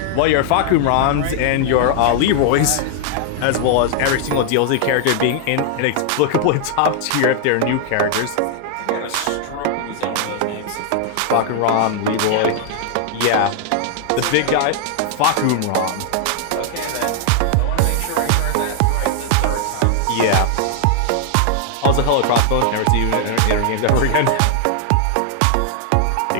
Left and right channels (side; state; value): both; different; correlation 0.00